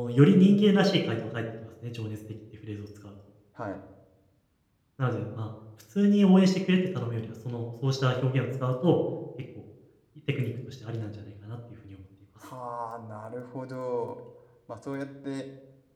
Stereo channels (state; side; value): identical; both; correlation 1.00